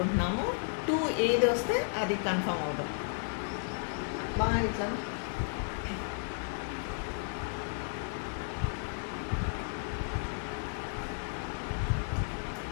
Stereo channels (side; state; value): right; silent; 55 dB below the other